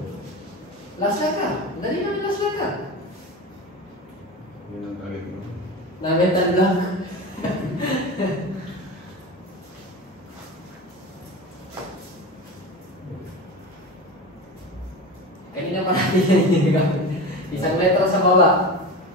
Last letter. Dali namin last letter. Yun ang target mo. Namental lang. Kanina pa natin yan ginagamit. Isang letra sa baba.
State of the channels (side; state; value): both; normal; correlation 0.27